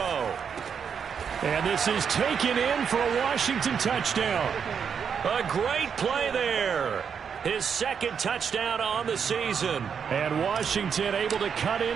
And this is taken in for a Washington touchdown. A great play there. His 2nd touchdown on the season. And Washington able to cut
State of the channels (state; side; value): quieter; left; 7.0 dB